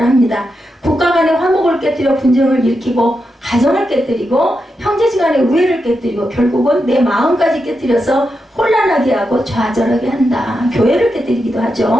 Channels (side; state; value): both; normal; correlation 0.86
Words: 합니다. 국가 간의 화목을 깨뜨려 분쟁을 일으키고 가정을 깨뜨리고 형제지간의 우애를 깨뜨리고 결국은 내 마음까지 깨뜨려서 혼란하게 하고 좌절하게 한다. 교회를 깨뜨리기도